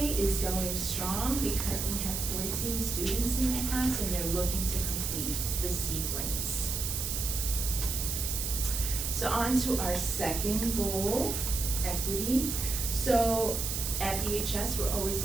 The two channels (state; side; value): noise; right; hiss, 2 dB below the sound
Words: is going strong. We currently have 14 students in that class, and they're looking to complete the sequence. So on to our second goal, equity. So at EHS, we're always